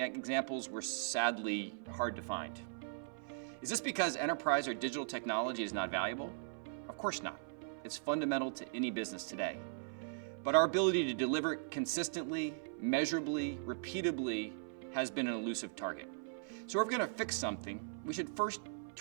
examples were sadly hard to find. Is this because enterprise or digital technology is not valuable? Of course not. It's fundamental to any business today. But our ability to deliver consistently, measurably, repeatably has been an elusive target. So if we're going to fix something, we should first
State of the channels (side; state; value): left; silent; 52 dB below the other